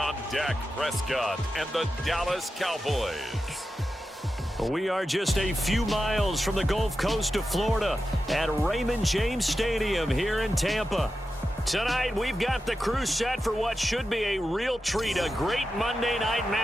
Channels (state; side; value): normal; both; correlation 0.91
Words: Dak Prescott and the Dallas Cowboys. We are just a few miles from the Gulf Coast of Florida at Raymond James Stadium here in Tampa. Tonight, we've got the crew set for what should be a real treat, a great Monday night